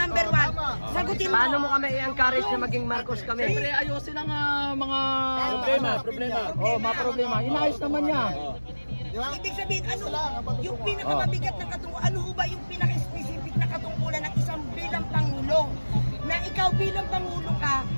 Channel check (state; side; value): inverted; both; correlation -1.00